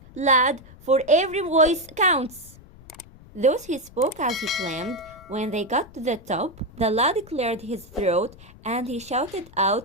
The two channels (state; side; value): noise; left; rumble, 22 dB below the sound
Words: lad, for every voice counts. Thus he spoke as he climbed. When they got to the top, the lad cleared his throat and he shouted